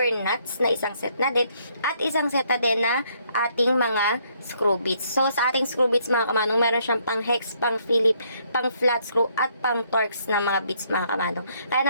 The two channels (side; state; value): both; inverted; correlation -0.69